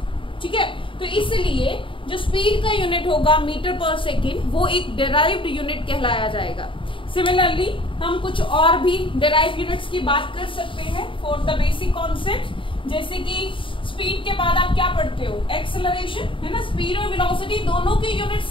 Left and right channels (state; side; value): late; right; 0.25 ms